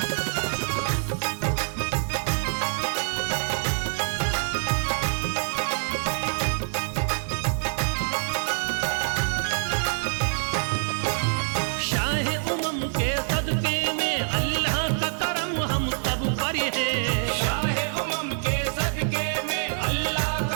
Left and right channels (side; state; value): left; silent; digital silence